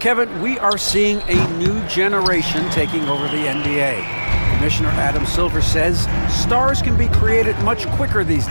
we are seeing a new generation taking over the NBA. Commissioner Adam Silver says stars can be created much quicker these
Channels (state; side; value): inverted; both; correlation -1.00